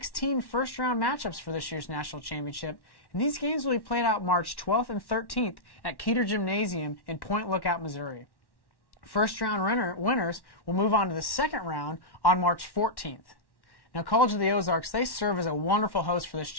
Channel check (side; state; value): right; late; 1.1 ms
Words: first-round matchups for this year's National Championship, and these games will be played out March 12th and 13th at Keeter Gymnasium in Point Lookout, Missouri. First-round winners will move on to the second round on March 14th. Now, College of the Ozarks, they serve as a wonderful host for this